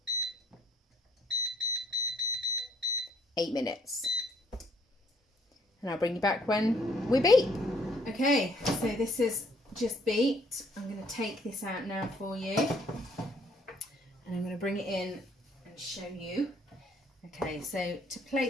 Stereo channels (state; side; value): normal; both; correlation 0.64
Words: 8 minutes. And I'll bring you back when we beep. Okay, so this is just beeped. I'm going to take this out now for you. And I'm going to bring it in and show you. Okay, so to